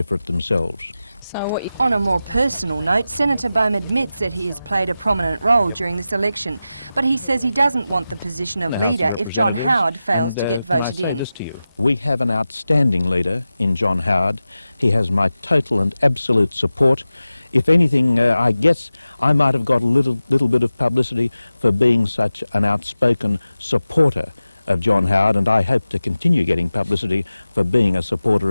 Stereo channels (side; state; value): both; inverted; correlation -0.94